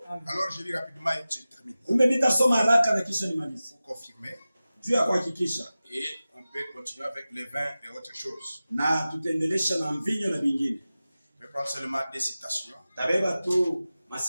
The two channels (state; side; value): inverted; both; correlation -0.95